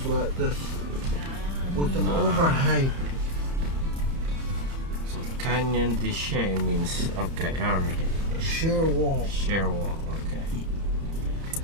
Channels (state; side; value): late; left; 30 ms